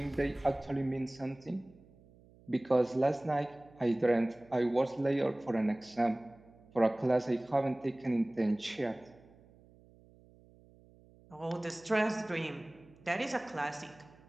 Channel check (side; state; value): right; noise; hum, 26 dB below the sound